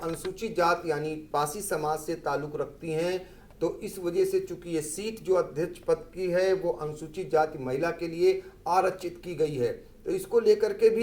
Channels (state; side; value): identical; both; correlation 1.00